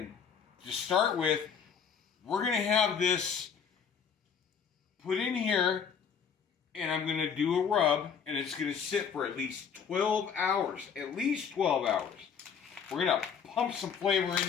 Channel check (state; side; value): quieter; right; 7.0 dB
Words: to start with, we're going to have this put in here, and I'm going to do a rub, and it's going to sit for at least 12 hours. At least 12 hours. We're going to pump some flavor